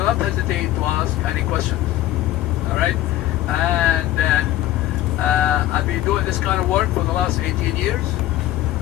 not hesitate to ask any questions. All right? And I've been doing this kind of work for the last 18 years,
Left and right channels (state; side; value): quieter; right; 14.5 dB